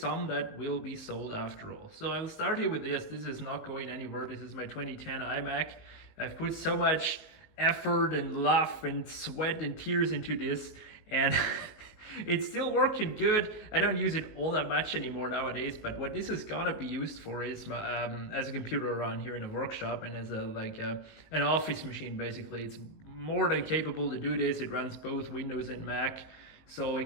that will be sold after all. So I'll start here with this. This is not going anywhere. This is my 2010 iMac. I've put so much effort and love and sweat and tears into this, and it's still working good. I don't use it all that much anymore nowadays, but what this is gonna be used for is as a computer around here in a workshop and as an office machine. Basically, it's more than capable to do this. It runs both Windows and Mac, so it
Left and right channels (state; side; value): late; right; 19 ms